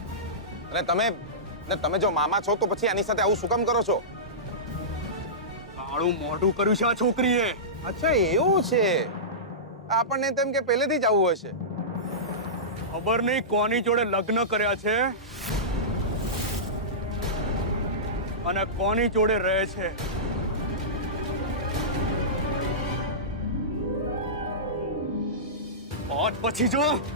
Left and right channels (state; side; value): normal; both; correlation -0.18